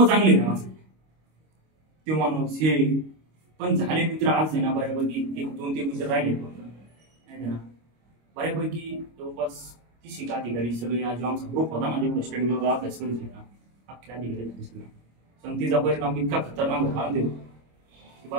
चांगले त्या माणसाचे. ते माणूस हे पण झाले मित्र आज आहे ना बऱ्यापैकी 1-2-3 मित्र राहिले नाही ना, बऱ्यापैकी जवळपास 30 अधिकारी सगळे आज आमचा ग्रुप होता ना जेवढं स्टडी ग्रुपला अभ्यास करीत ना अख्खे अधिकारी सगळे. संगतीचा परिणाम इतका खतरनाक होता देऊ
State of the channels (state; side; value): late; left; 25 ms